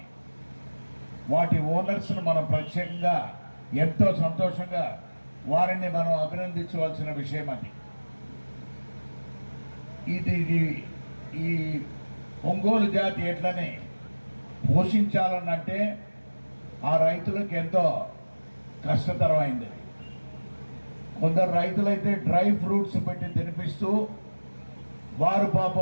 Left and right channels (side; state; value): both; inverted; correlation -1.00